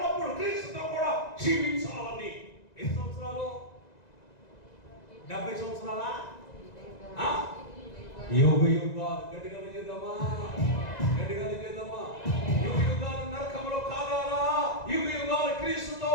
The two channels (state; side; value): late; right; 2.0 ms